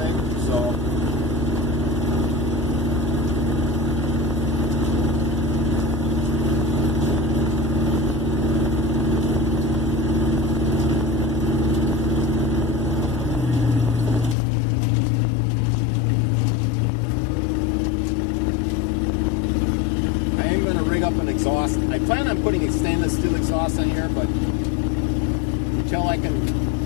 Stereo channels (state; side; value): drops out; right; at 14.4 s